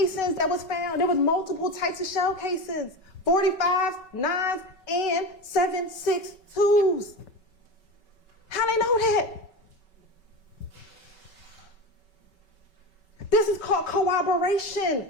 that was found, there was multiple types of shell casings. 45s, 9s, and 7.62s. How they know that? This is called corroboration.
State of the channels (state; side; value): late; right; 5.3 ms